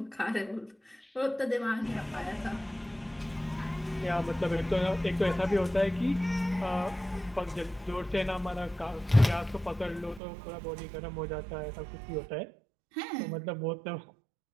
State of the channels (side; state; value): left; drops out; at 10.2 s